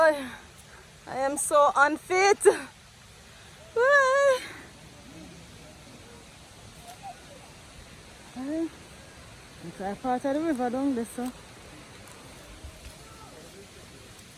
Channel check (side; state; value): both; identical; correlation 1.00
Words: I am so unfit. Why? It's like part of the river down there, so.